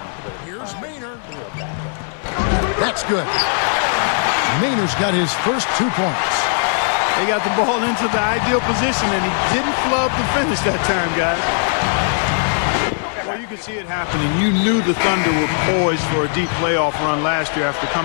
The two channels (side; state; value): right; silent; 60 dB below the other